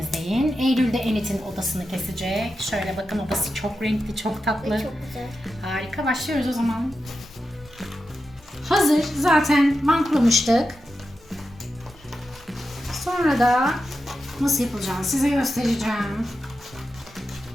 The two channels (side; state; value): both; normal; correlation 0.90